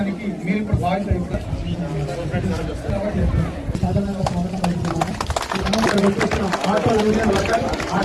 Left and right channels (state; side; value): identical; both; correlation 1.00